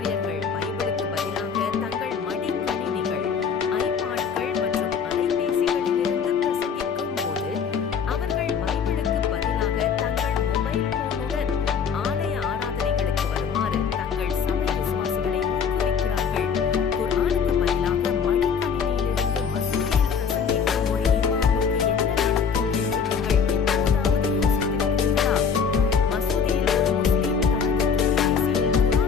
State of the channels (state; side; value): quieter; right; 6.5 dB